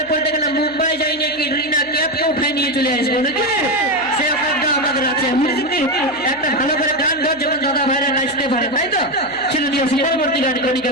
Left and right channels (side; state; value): right; noise; hum, 27 dB below the sound